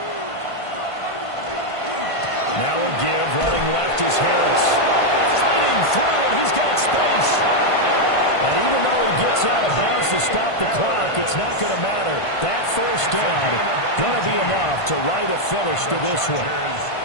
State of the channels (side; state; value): right; late; 1.5 ms